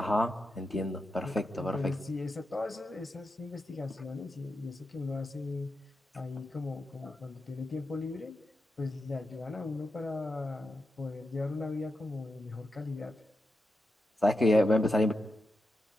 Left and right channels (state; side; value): normal; both; correlation 0.88